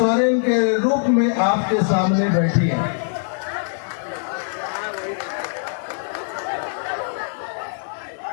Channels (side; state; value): right; silent; digital silence